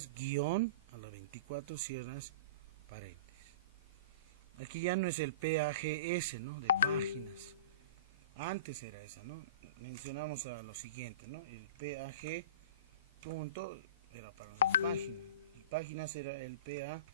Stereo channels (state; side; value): inverted; both; correlation -0.35